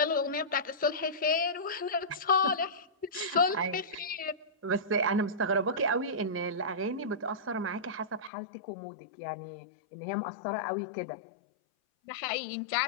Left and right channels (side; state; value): right; drops out; at 8.3 s